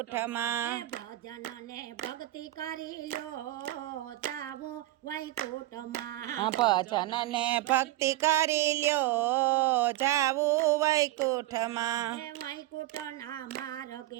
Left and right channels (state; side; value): quieter; left; 16.2 dB